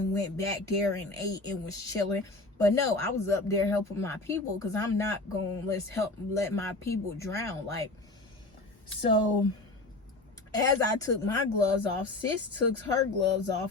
went back there and ate and was chilling. But no, I was up there helping my people because I'm not going to let my people drown. Like, so as I took my gloves off, sis took her gloves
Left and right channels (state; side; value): quieter; right; 3.0 dB